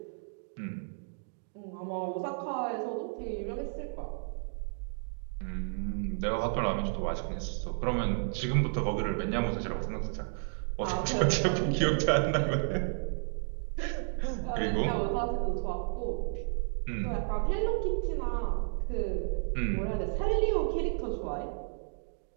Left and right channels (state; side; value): silent; left; digital silence